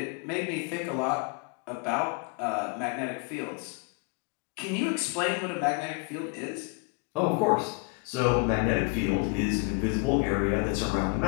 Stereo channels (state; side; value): quieter; right; 30.9 dB